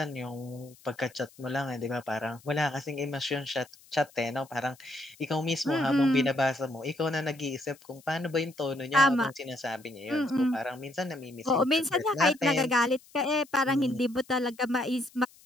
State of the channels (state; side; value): noise; left; hiss, 26 dB below the sound